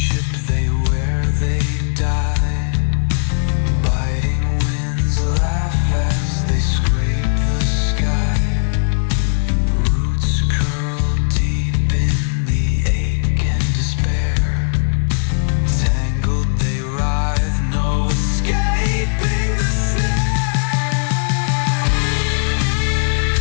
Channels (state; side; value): silent; right; 64 dB below the other